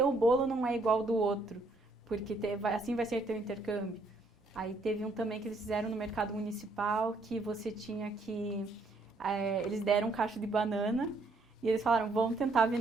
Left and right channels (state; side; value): quieter; left; 3.1 dB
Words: bolo não é igual ao do outro, porque assim vai ser teu intercâmbio. Aí teve um também que eles fizeram no mercado municipal, que você tinha que... eles deram um cacho de banana e eles falaram, vamos tentar